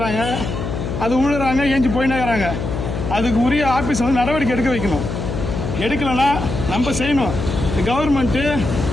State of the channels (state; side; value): noise; left; hum, 5 dB below the sound